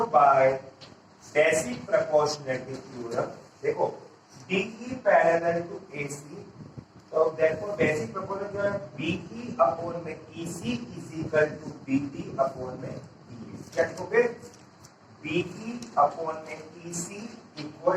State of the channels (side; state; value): both; identical; correlation 1.00